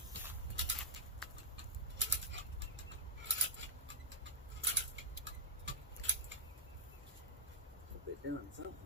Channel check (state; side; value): normal; both; correlation -0.12